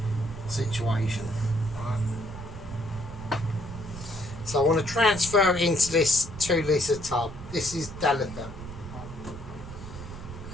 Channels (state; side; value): noise; right; rumble, 12 dB below the sound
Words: situation. Right. So I want to transfer it into this 2-litre tub. This is delicate.